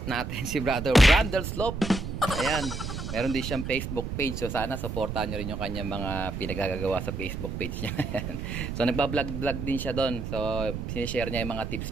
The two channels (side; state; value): right; noise; rumble, 5 dB below the sound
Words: natin si brother Brandel Slope. Ayan, meron din siyang Facebook page. So sana supportahan nyo rin yung kanyang mga pinagagagawa sa Facebook page niya. So nagbablog-vlog din siya doon. So sinishare niya yung mga